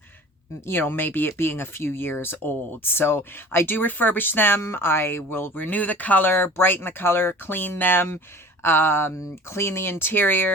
maybe it being a few years old. So I do refurbish them. I will renew the color, brighten the color, clean them, clean the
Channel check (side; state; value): both; normal; correlation 0.42